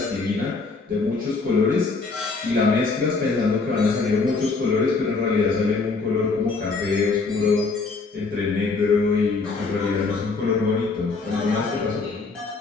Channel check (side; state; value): right; quieter; 4.1 dB